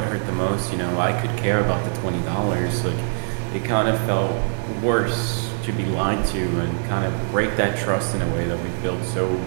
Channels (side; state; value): left; silent; 61 dB below the other